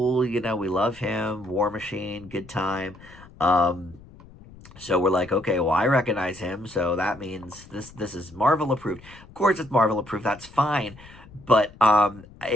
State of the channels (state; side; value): noise; left; rumble, 21 dB below the sound